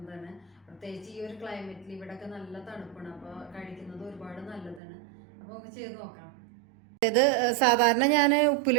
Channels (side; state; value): left; drops out; at 4.8 s